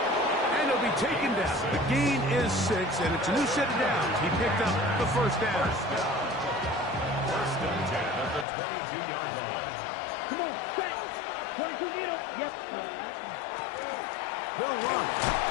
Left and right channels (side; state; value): right; drops out; at 8.5 s